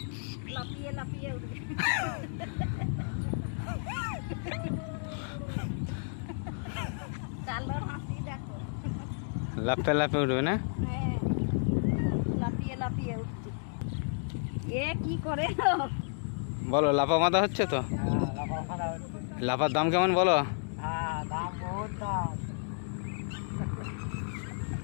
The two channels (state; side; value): silent; right; digital silence